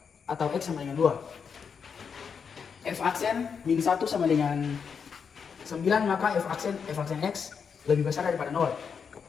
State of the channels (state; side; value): quieter; right; 6.4 dB